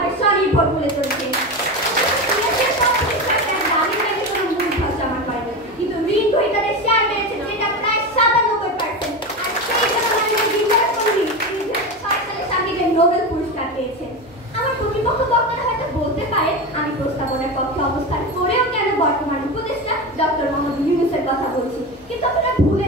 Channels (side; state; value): both; normal; correlation 0.21